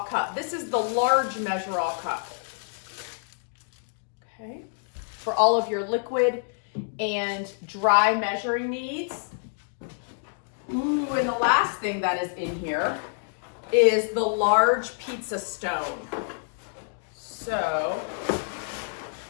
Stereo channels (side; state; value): right; silent; digital silence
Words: cup. This is the large measure-all cup. Okay, for all of your liquid and dry measuring needs. Ooh, and the last thing that is in here is the large pizza stone. So